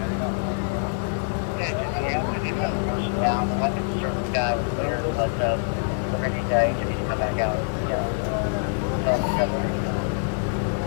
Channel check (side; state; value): right; silent; 62 dB below the other